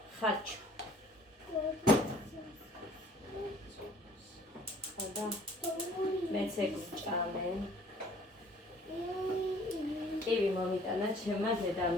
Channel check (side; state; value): both; normal; correlation 0.55